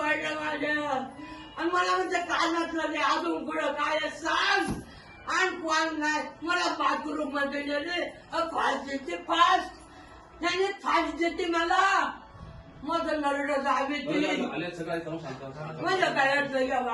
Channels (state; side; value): identical; both; correlation 1.00